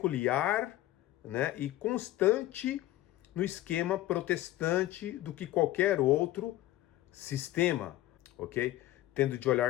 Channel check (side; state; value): right; quieter; 15.3 dB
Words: né, e constante no esquema protestante do que qualquer outro sistema, ok? Tendo de